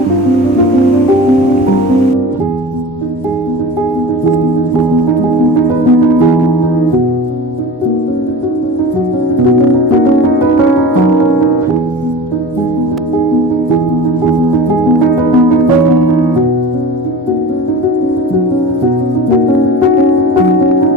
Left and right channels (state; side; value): normal; both; correlation 0.35